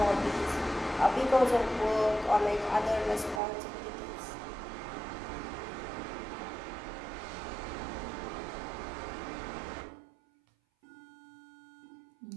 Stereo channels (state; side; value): drops out; left; at 3.4 s